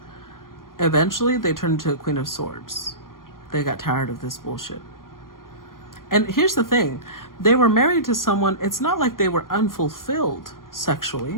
eventually they turned into a Queen of Swords. They got tired of this bullshit. And here's the thing. They were married to someone, it's not like they were unfulfilled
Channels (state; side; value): late; right; 0.91 ms